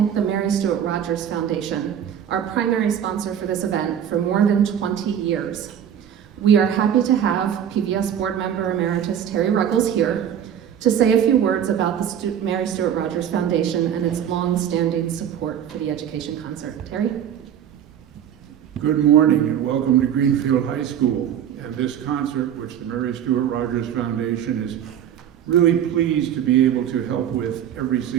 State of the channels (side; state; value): left; quieter; 9.4 dB